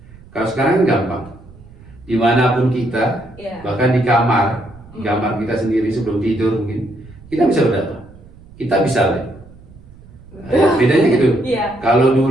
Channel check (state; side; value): noise; right; rumble, 22 dB below the sound